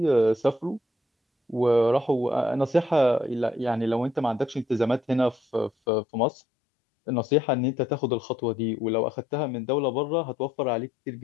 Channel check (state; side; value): drops out; right; at 5.7 s